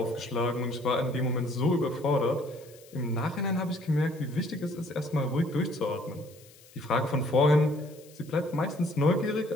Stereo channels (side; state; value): left; noise; hiss, 24 dB below the sound